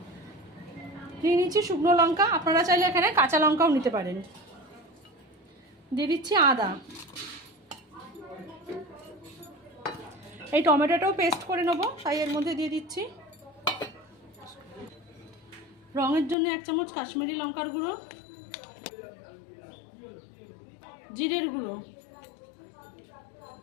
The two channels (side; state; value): right; drops out; at 16.4 s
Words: নিয়ে নিচ্ছি শুকনো লঙ্কা, আপনারা চাইলে এখানে কাঁচা লঙ্কাও নিতে পারেন। দিয়ে দিচ্ছি আদা। এই টমেটোটাও পেস্ট করে নেবো, তাই এর মধ্যে দিয়ে দিচ্ছি। রঙের জন্য 1 চামচ কাশ্মীরি লঙ্কার গুঁড়ো, জিরের গুঁড়ো,